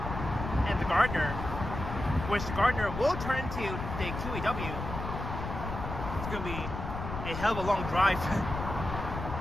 and the Gardner, which the Gardner will turn into the QEW. It's going to be a hell of a long drive.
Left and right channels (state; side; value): noise; left; rumble, 6 dB below the sound